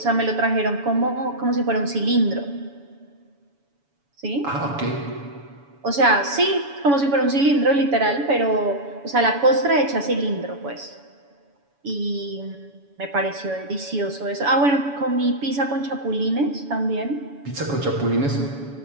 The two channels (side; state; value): left; late; 7.1 ms